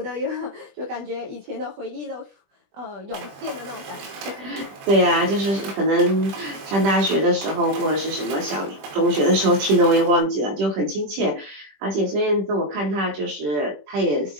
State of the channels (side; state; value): left; late; 21 ms